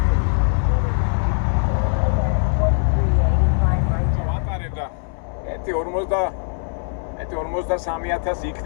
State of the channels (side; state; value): right; silent; 65 dB below the other